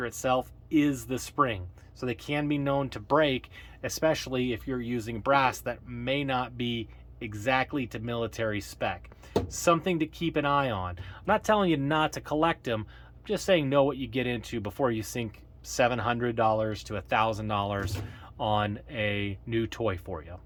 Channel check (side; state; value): both; identical; correlation 1.00